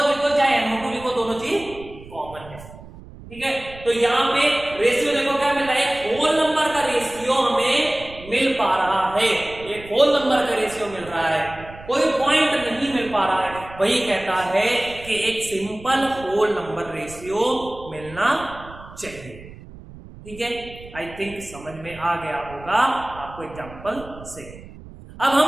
लिखो चाहे NO2 लिखो, दोनों चीज कॉमन है, ठीक है। तो यहाँ पे रेशियो देखो क्या मिल रहा है, एक होल नंबर का रेशियो हमें मिल पा रहा है, एक होल नंबर का रेशियो मिल रहा है, कोई पॉइंट नहीं मिल पा रहा है, वही कहता है कि एक सिंपल होल नंबर रेशियो मिलना चाहिए, ठीक है। आई थिंक समझ में आ गया होगा आपको एग्जांपल से। अब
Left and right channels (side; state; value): right; noise; rumble, 17 dB below the sound